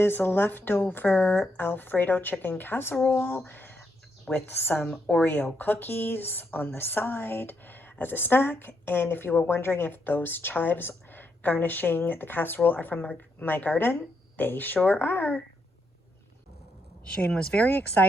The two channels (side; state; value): both; normal; correlation 0.79